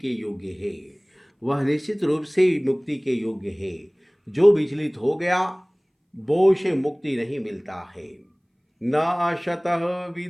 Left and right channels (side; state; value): both; identical; correlation 1.00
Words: योग्य है। वह निश्चित रूप से मुक्ति के योग्य है। जो विचलित हो गया वो से मुक्ति नहीं मिलता है। न अशतः